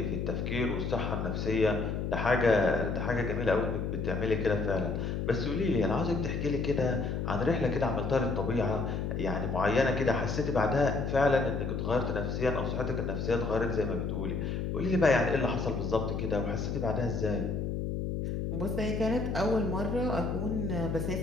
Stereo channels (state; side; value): noise; left; hum, 2 dB below the sound